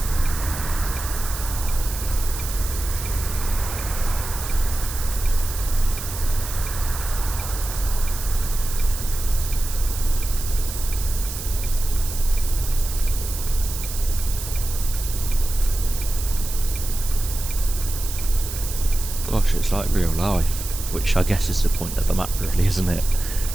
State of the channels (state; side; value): noise; right; hiss, 8 dB below the sound